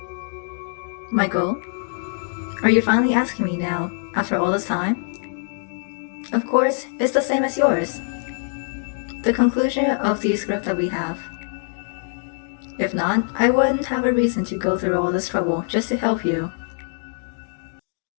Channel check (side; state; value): right; silent; 63 dB below the other